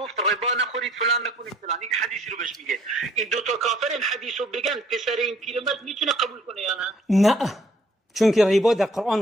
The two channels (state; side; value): normal; both; correlation 0.60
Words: ربا نخورید فلان نکنید فلان، این حدیث رو بهش میگه. این 2 تا کافر این حدیث رو بگن، پسر این پیرمرد میتونه قبول کنه یا نه؟ نه، چون که ربا در